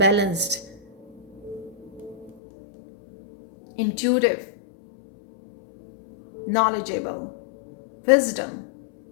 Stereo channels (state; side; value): drops out; right; at 2.4 s